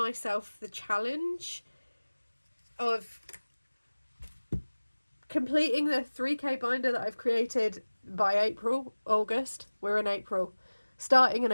the challenge of completing the 3k binder that I've created by August. We're in April, starting in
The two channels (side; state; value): both; inverted; correlation -1.00